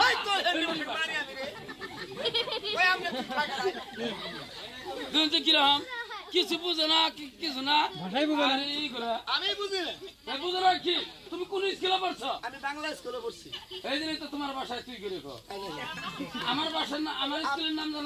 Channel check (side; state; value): both; identical; correlation 1.00